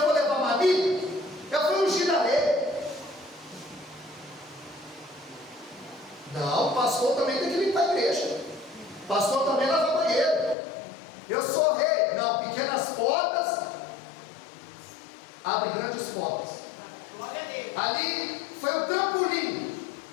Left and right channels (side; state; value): right; drops out; at 10.6 s